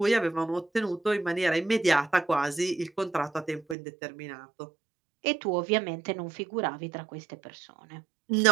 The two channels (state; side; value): drops out; left; at 3.8 s